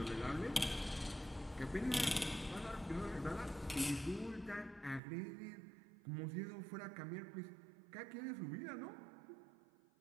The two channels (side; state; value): left; drops out; at 5.0 s